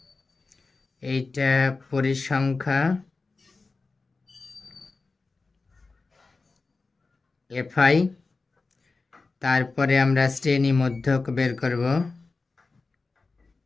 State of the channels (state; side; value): quieter; right; 3.9 dB